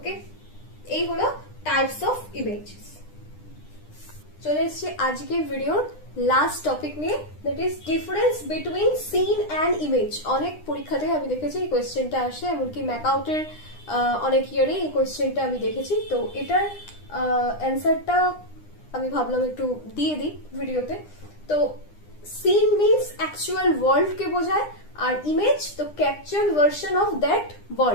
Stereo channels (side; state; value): right; late; 9.9 ms